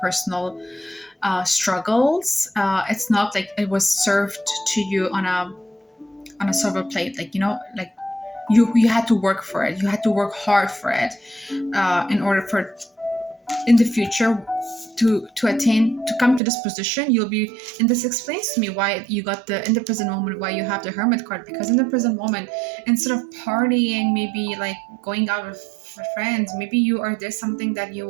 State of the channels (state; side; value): drops out; left; at 16.4 s